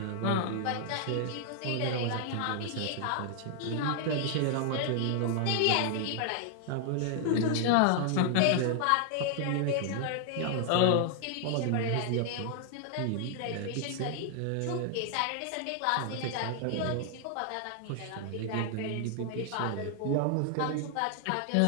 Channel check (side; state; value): both; different; correlation 0.00